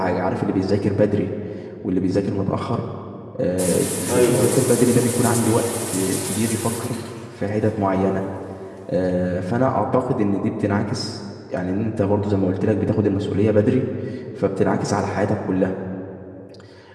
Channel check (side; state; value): both; identical; correlation 1.00